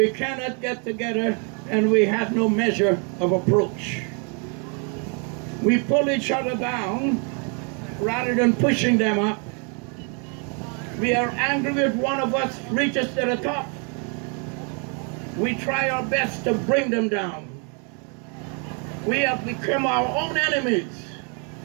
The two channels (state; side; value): quieter; left; 37.4 dB